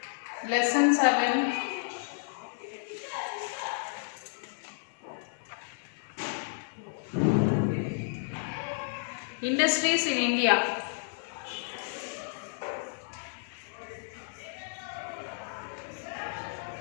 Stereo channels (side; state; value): right; silent; digital silence